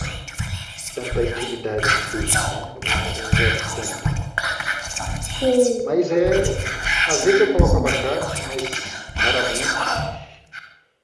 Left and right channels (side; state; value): both; identical; correlation 1.00